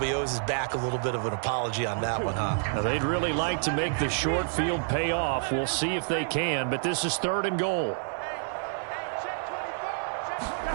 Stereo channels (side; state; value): left; silent; 58 dB below the other